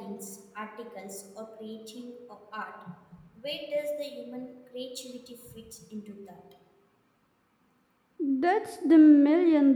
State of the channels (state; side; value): identical; both; correlation 1.00